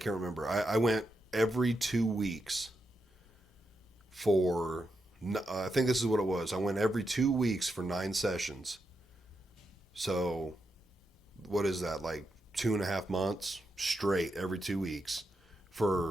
remember. I went every 2 weeks for, I think this is what it was. I went every 2 weeks for 9 sessions. So what is that? Like 2.5 months straight every 2 weeks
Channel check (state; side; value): normal; both; correlation 0.85